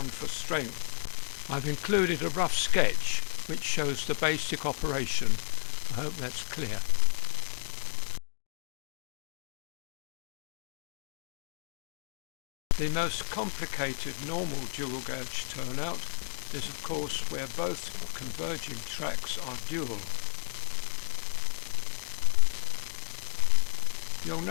for strength. I've included a rough sketch which shows the basic operation. I hope that's clear. The most complicated normal dual gauge turnout is of course where both converging tracks are dual. You'll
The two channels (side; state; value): right; silent; digital silence